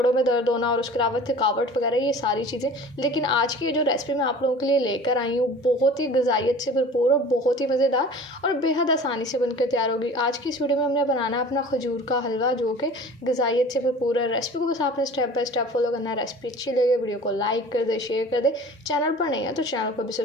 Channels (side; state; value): both; normal; correlation 0.42